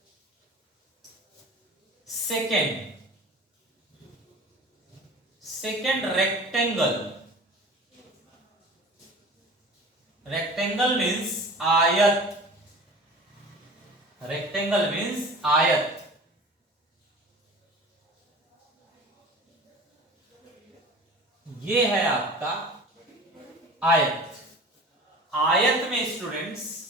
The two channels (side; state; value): both; normal; correlation 0.40